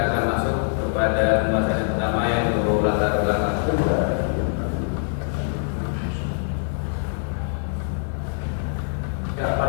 akan masuk kepada pembahasan yang pertama yaitu latar belakang. Ya,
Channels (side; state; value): right; silent; 63 dB below the other